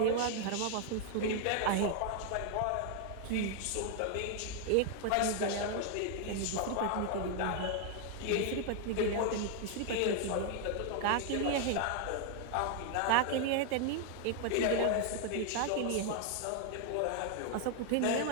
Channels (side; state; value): both; different; correlation 0.00